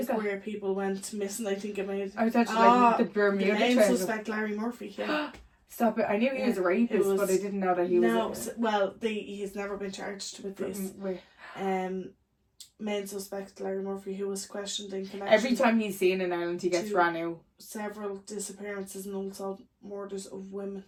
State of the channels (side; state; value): both; identical; correlation 1.00